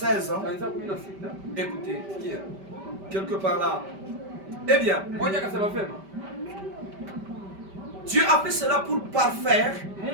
ans. Écoutez, quelque part là. Eh bien, Dieu a fait cela pour parfaire,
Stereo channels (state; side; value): late; left; 5.1 ms